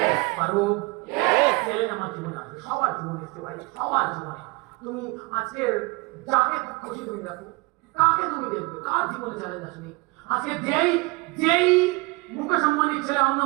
পারবো? চ্যালেঞ্জ আমার জীবনে আসবে, সবার জীবনে এসছে ভাই, সবার জীবনে। তুমি আজকে যাকে খুশি তুমি দেখো, কাকে তুমি দেখবে, কার জীবনে চ্যালেঞ্জ আসেনি? আজকে যেই মুকেশ আম্বানির ছেলে অনিল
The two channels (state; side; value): quieter; left; 25.3 dB